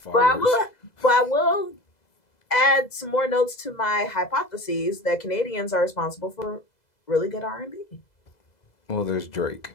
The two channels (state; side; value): late; right; 2.0 ms